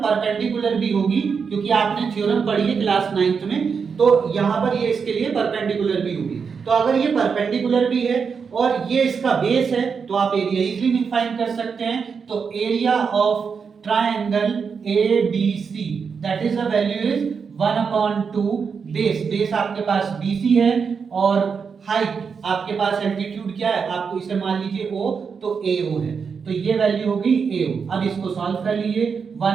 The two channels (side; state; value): left; quieter; 5.9 dB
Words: परपेंडिकुलर भी होगी, क्योंकि आपने थ्योरम पढ़ी है क्लास 9th में, तो यहां पर ये इसके लिए परपेंडिकुलर भी होगी। तो अगर ये परपेंडिकुलर भी है और ये इसका बेस है, तो आप एरिया इजीली फाइंड कर सकते हैं। तो area of triangle ABC, that is the value is 1/2 base आपके पास BC है, और हाइट आपके पास एल्टीट्यूड क्या है, आपको इसे मान लीजिए O, तो AO है। तो ये वैल्यू होगी AO। अब इसको सॉल्व कर लीजिए।